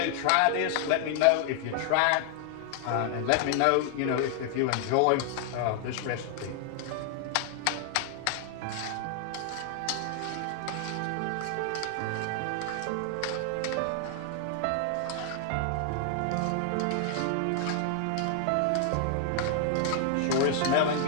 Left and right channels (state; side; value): different; both; correlation 0.00